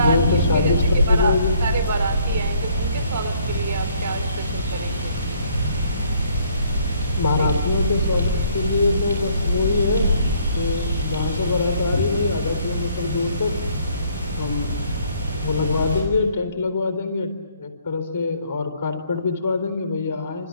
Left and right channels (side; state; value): both; inverted; correlation -0.64